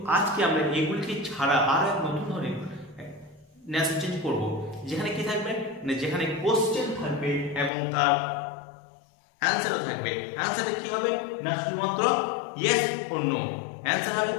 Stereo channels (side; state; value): right; drops out; at 7.7 s